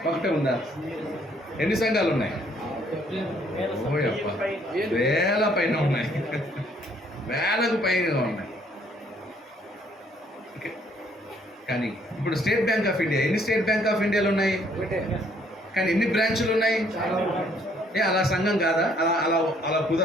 ఒకటే ఉండాలి. ఎన్ని సంఘాలు ఉన్నాయి? వేల పైన ఉన్నాయి. వేలకు పైన ఉన్నాయి. ఓకే. కానీ ఇప్పుడు స్టేట్ బ్యాంక్ ఆఫ్ ఇండియా, ఎన్ని స్టేట్ బ్యాంక్ ఆఫ్ ఇండియాలు ఉన్నాయి? కానీ ఎన్ని బ్రాంచులు ఉన్నాయి? అలా సంఘం కాదా? అలా అలా అలా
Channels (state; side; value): normal; both; correlation 0.65